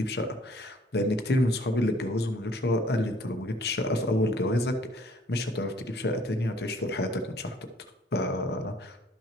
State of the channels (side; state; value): both; normal; correlation 0.59